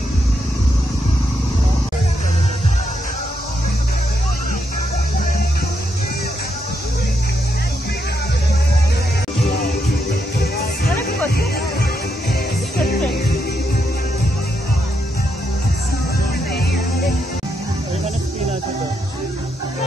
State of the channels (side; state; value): both; normal; correlation 0.80